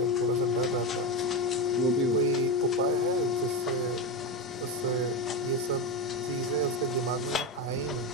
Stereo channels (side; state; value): both; normal; correlation 0.14